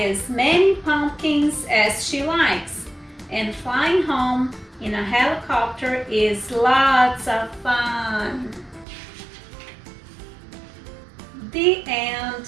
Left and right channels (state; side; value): drops out; left; at 8.8 s